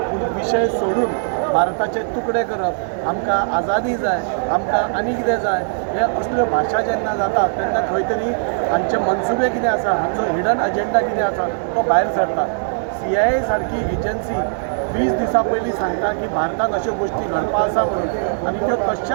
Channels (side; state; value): left; silent; digital silence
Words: पूण विशय सोडून भारताचे तुकडे करप, आमकां आजादी जाय, आमकां आनी कितें जाय, हे असल्यो भाशा जेन्ना जाता तेन्ना खंय तरी हांचे मनसुबे कितें आसा, हांचो हिडन अजेंडा कितें आसा तो भायर सरता। CIA सारकी एजन्सी 20 दिसां पयलीं सांगता की भारतांत अश्यो गोश्टी घडपा आसा म्हणून, आनी त्यो